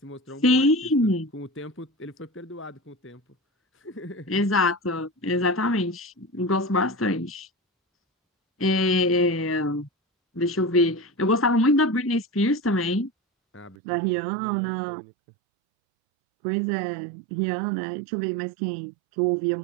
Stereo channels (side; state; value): left; drops out; at 13.8 s